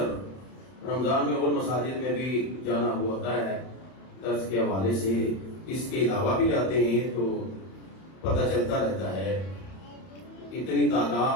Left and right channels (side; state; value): right; late; 31 ms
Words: رمضان میں اور مساجد میں بھی جانا ہوتا ہے درس کے حوالے سے. اس کے علاوہ بھی جاتے ہیں تو پتہ چلتا رہتا ہے. اتنی